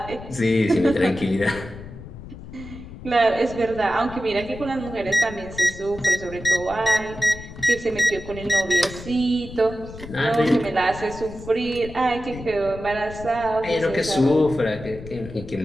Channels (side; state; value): left; noise; rumble, 14 dB below the sound